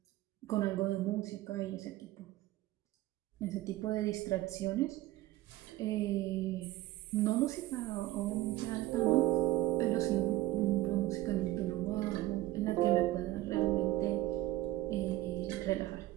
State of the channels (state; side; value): quieter; left; 16.4 dB